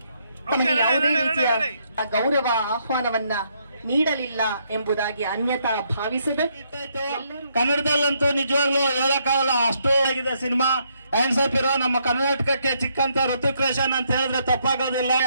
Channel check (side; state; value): both; inverted; correlation -0.74